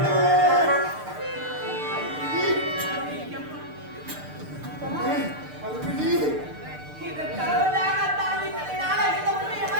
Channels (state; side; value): late; left; 6.7 ms